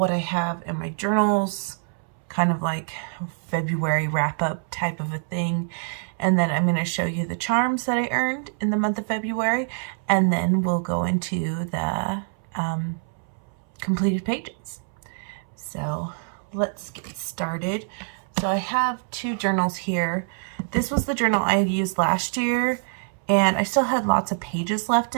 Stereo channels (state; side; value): silent; left; 62 dB below the other